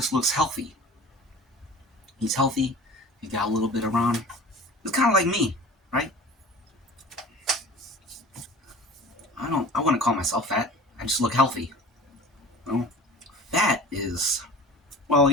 looks healthy. He's healthy. He got a little bit around. It's kind of like me, right? I wouldn't call myself fat. I just look healthy. You know? Fat is, well,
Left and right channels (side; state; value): both; normal; correlation 0.40